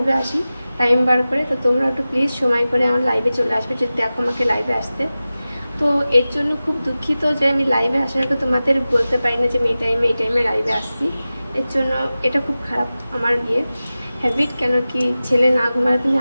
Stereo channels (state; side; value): inverted; both; correlation -0.96